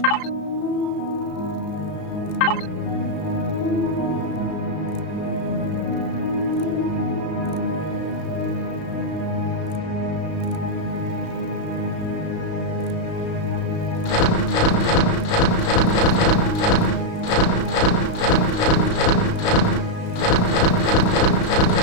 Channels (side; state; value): right; late; 34 ms